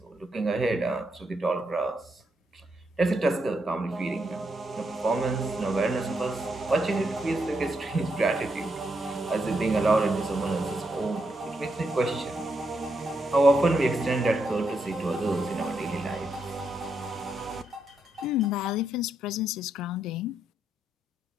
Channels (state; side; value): normal; both; correlation 0.80